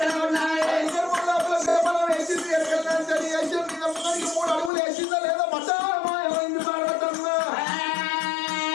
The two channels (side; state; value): right; drops out; at 4.7 s